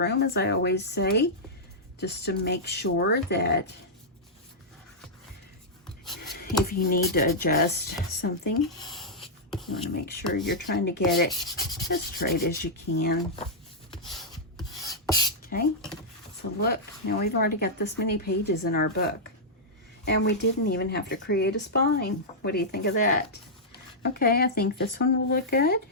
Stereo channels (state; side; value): normal; both; correlation -0.09